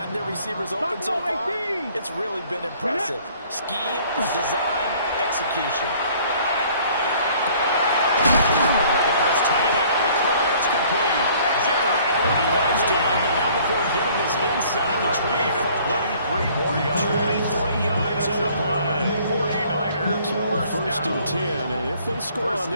their receivers open so far, it's really been impressive. Scheme, design, execution. The first tight end on the call, it's complete. And he goes down, but not before getting us inside the 25. 23 more yards. 23 yards on the play. 49ers. So first and 10, and if they score on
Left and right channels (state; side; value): inverted; both; correlation -0.56